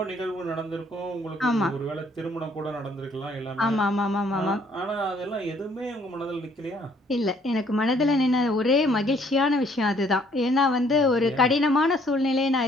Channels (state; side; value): normal; both; correlation 0.63